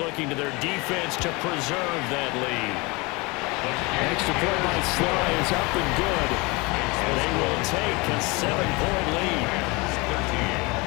to their defense to preserve that lead. Extra point by Sly is up and good. They will take a 7-point lead.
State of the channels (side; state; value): right; quieter; 25.9 dB